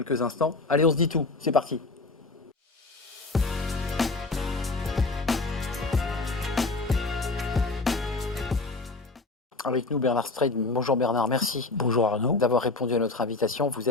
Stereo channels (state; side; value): quieter; right; 3.5 dB